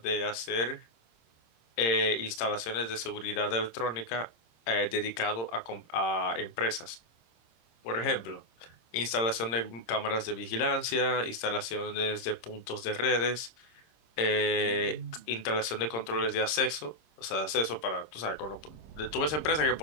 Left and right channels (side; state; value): right; late; 26 ms